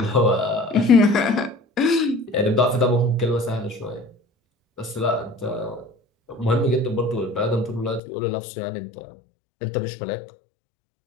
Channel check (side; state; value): right; drops out; at 8.0 s